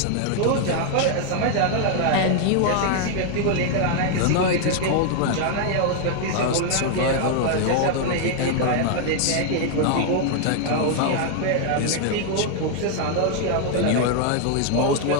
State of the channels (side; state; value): both; different; correlation 0.00